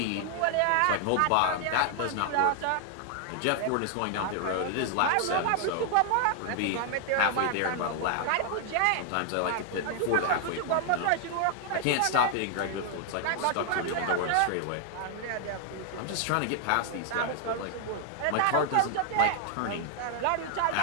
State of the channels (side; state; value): both; different; correlation 0.00